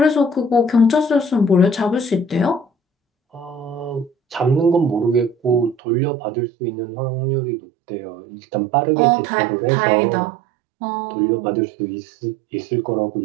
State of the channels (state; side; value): drops out; left; at 5.8 s